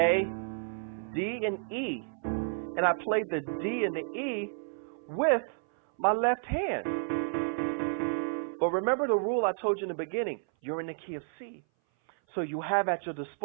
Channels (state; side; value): silent; left; 57 dB below the other